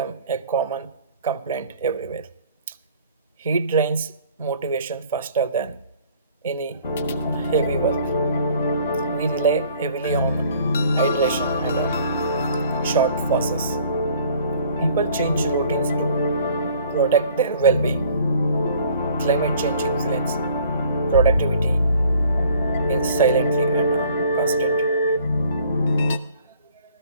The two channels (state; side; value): inverted; both; correlation -0.55